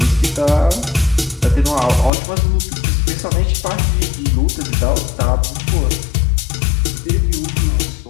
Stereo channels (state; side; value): drops out; right; at 2.1 s